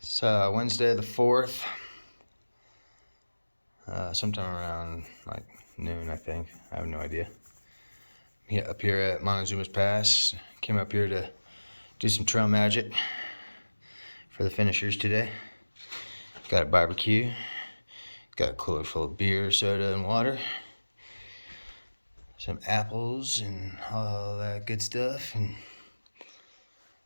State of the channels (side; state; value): both; inverted; correlation -1.00